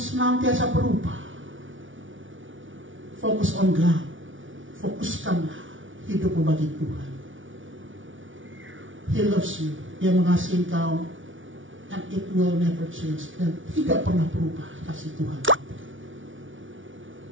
berubah. Focus on God. Fokuskanlah hidupmu bagi Tuhan. He loves you. Dia mengasihi engkau. And it will never change. Dan tidak pernah berubah kasih Tuhan.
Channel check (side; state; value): left; late; 0.56 ms